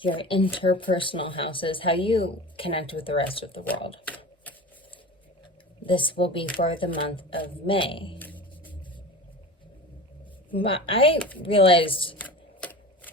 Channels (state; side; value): normal; both; correlation 0.33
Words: your interpersonal houses, how you connect with the rest of the world. This will be for the month of May. I realized